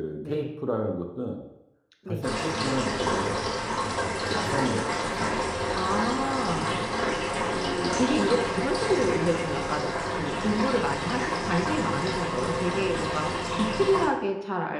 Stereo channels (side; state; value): both; identical; correlation 1.00